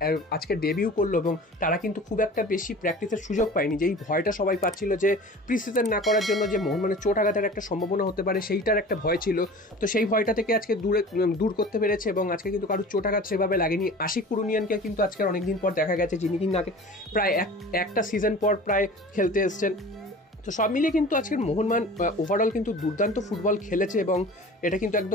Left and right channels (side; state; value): both; normal; correlation 0.40